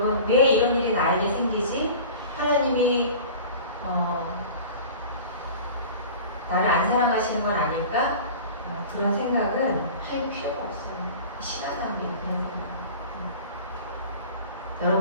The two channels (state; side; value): inverted; both; correlation -0.39